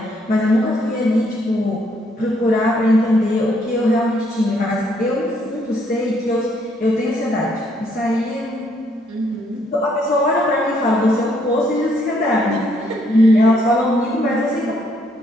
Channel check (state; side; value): normal; both; correlation 0.70